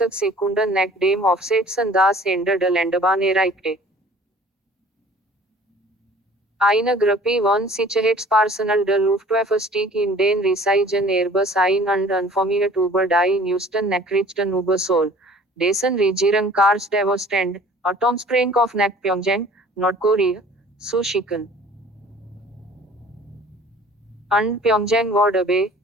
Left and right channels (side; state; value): both; normal; correlation 0.50